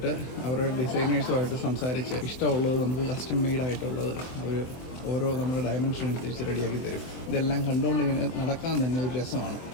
അവരുടെ ഡിസൈനേഴ്സുമായിട്ട് സംസാരിച്ച് ഇഷ്ടമുള്ളത് നമുക്ക് കസ്റ്റം മെയ്ഡായിട്ടുള്ളത് അവർ ഓരോ നമ്മുടെ ഡയമെൻഷൻ അനുസരിച്ച് റെഡിയാക്കി തരും. ഇതെല്ലാം കണ്ടുകൊണ്ട് ഇങ്ങനെ നടക്കാൻ തന്നെ ഒരു രസമാണ്.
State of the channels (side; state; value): right; late; 24 ms